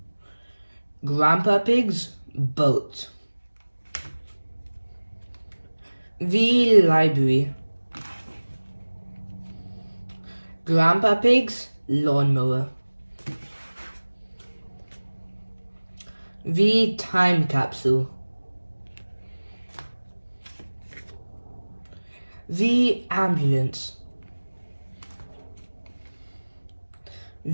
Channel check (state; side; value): inverted; both; correlation -1.00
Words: Grandpa Pig's Boat. The Library. Grandpa Pig's Lawnmower. The Time Capsule. The Ambulance.